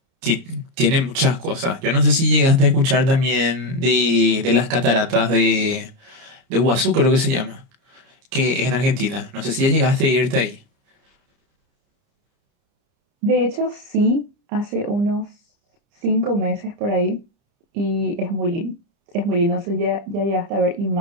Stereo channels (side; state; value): left; late; 30 ms